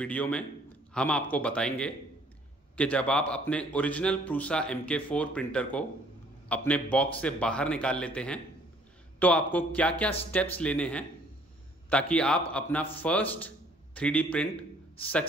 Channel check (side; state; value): both; normal; correlation 0.59